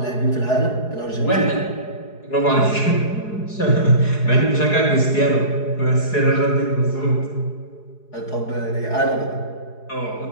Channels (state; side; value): late; right; 4.8 ms